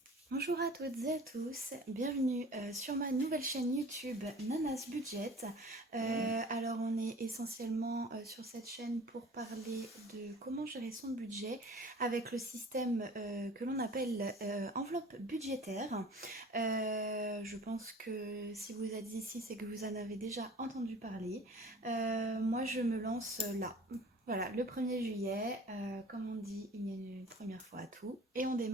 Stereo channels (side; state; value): both; normal; correlation 0.45